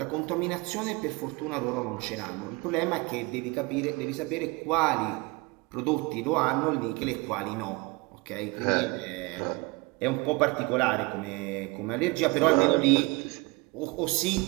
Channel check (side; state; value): left; quieter; 25.5 dB